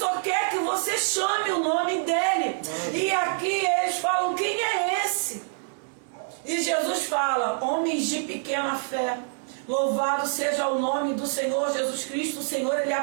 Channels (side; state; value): left; silent; 61 dB below the other